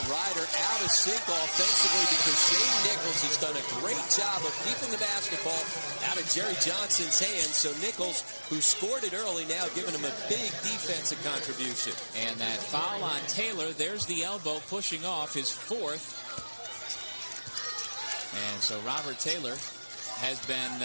Ryder out of sync offensively because Shane Nichols has done a great job of keeping the basketball out of Jerry Johnson's hands. So Nichols, who scored it early, now giving him a big defensive contribution. And that foul on Taylor, there's the elbow pushing off his 4th. And so Robert Taylor has been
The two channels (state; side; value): inverted; both; correlation -1.00